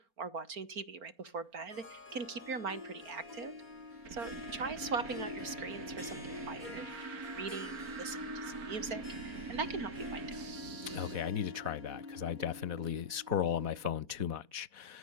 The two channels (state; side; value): late; left; 4.4 ms